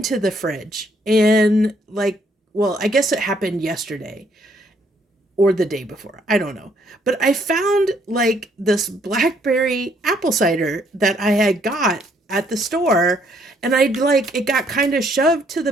the fridge, and I guess it happened yesterday or the day before. I don't know. But I found like this blackberry apple cider that I had got at the store, and it got kind of shoved to the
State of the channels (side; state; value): both; normal; correlation 0.68